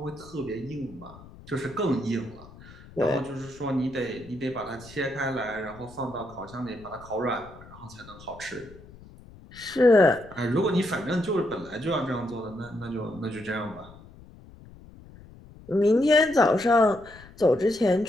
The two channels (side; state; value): left; noise; rumble, 20 dB below the sound